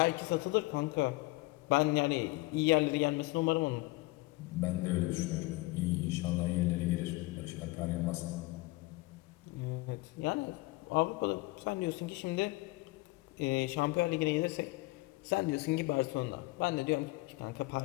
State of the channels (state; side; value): quieter; right; 22.0 dB